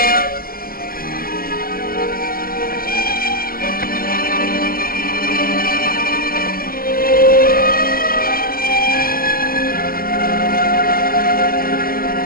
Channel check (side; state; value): right; late; 0.42 ms